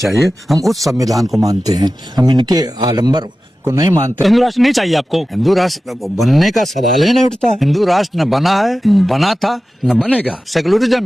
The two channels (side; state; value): both; normal; correlation 0.94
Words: हम उस संविधान को मानते हैं, हम इनके आडंबर को नहीं मानते। हिंदू राष्ट्र नहीं चाहिए आपको? हिंदू राष्ट्र बनने का सवाल ही नहीं उठता। हिंदू राष्ट्र न बना है, बना था, न बनेगा।